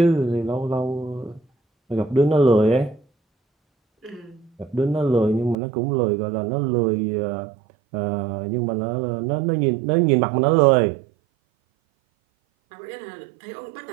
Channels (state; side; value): drops out; left; at 5.6 s